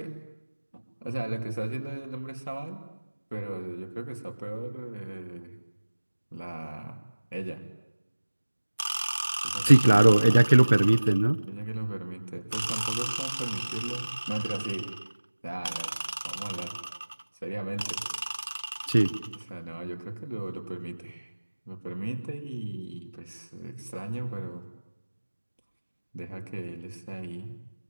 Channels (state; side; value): inverted; both; correlation -1.00